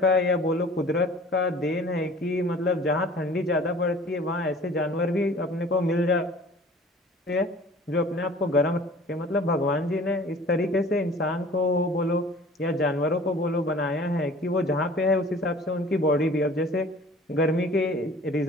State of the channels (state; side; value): normal; both; correlation 0.47